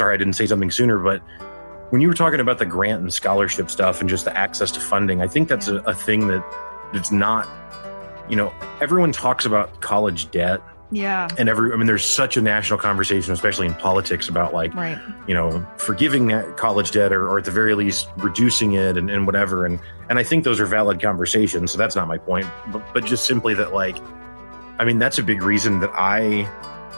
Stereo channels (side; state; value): both; inverted; correlation -1.00